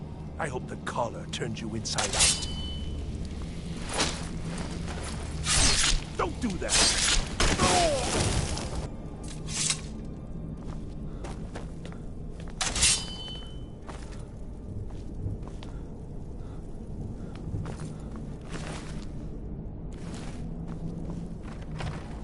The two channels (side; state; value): both; identical; correlation 1.00